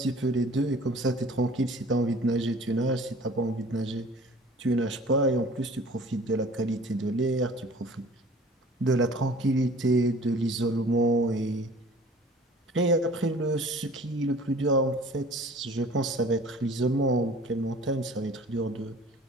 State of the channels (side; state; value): both; normal; correlation 0.47